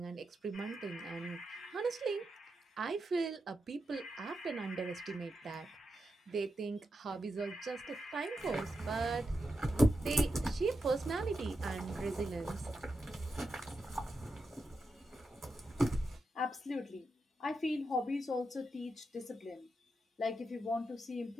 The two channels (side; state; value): both; normal; correlation 0.87